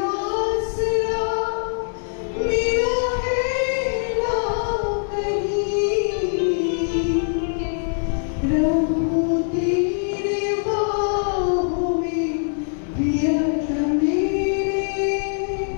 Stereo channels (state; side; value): silent; right; digital silence